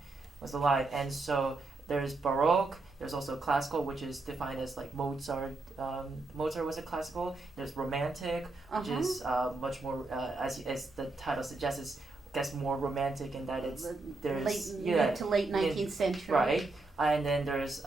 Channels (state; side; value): quieter; left; 3.3 dB